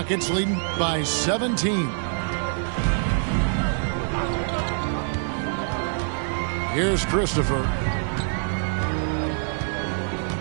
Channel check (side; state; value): left; silent; 62 dB below the other